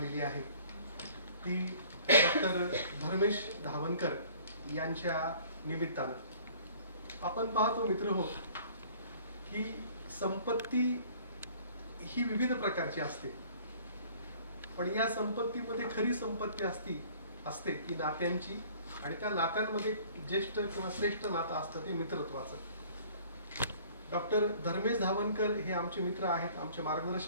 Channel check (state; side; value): inverted; both; correlation -0.53